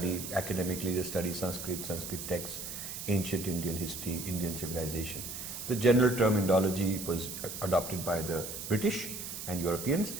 academically, they study Sanskrit, Sanskrit texts, ancient Indian history, Indian civilization. The general term Indology was adopted by the British and Europeans,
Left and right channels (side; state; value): right; noise; hiss, 7 dB below the sound